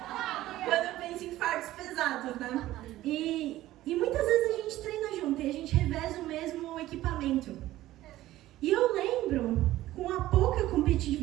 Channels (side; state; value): left; quieter; 15.4 dB